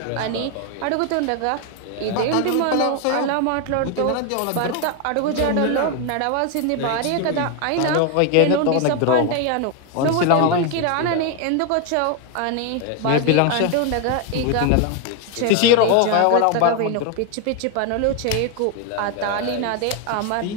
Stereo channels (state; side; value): different; both; correlation 0.01